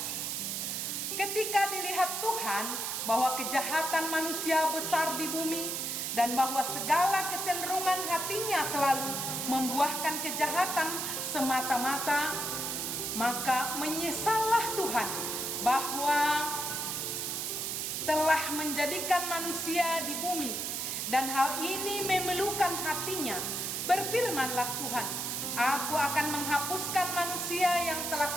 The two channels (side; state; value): right; noise; hiss, 2 dB below the sound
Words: Ketika dilihat Tuhan bahwa kejahatan manusia besar di bumi dan bahwa segala kecenderungan hatinya selalu membuahkan kejahatan semata-mata, maka menyesallah Tuhan bahwa telah menjadikan manusia di bumi dan hal ini memelukan hatinya. Berfirmanlah Tuhan, Aku akan menghapuskan manusia yang telah